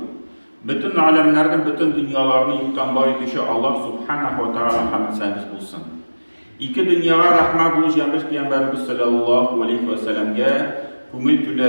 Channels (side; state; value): both; inverted; correlation -1.00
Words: bütün alemlerden, bütün dünyalarını yıkan bari kişi Allah Subhanahu ve Teala hamd sənəs bulsun. İki dünyaya rahmet bulacağımız Peygamberimiz sallallahu aleyhi ve sellem'e көңіл